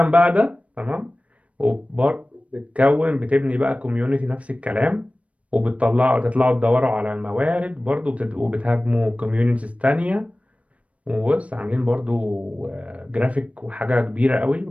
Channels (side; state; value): left; late; 0.064 ms